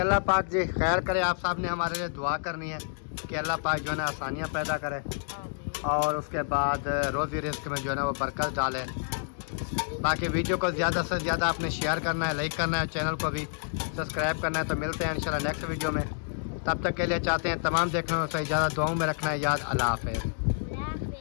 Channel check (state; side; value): silent; right; digital silence